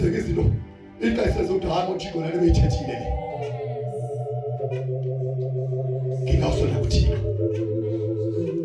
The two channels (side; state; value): both; identical; correlation 1.00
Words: izinto ixesha ezokuhamba uThixo nalo beyithethile le ngingawusondela kuThixo.